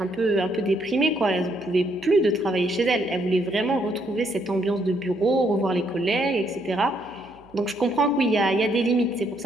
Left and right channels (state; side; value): noise; right; hum, 28 dB below the sound